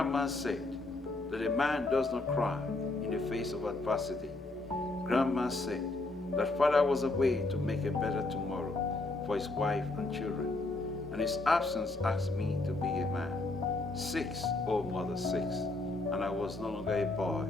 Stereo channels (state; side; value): quieter; right; 3.0 dB